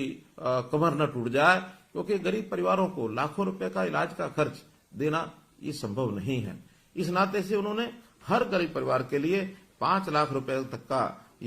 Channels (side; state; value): both; identical; correlation 1.00